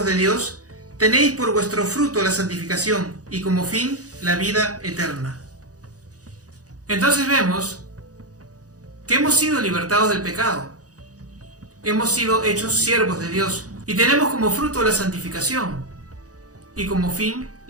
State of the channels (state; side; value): late; left; 0.67 ms